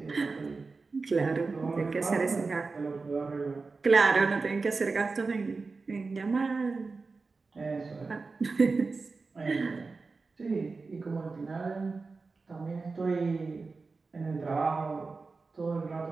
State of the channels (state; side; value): quieter; left; 4.1 dB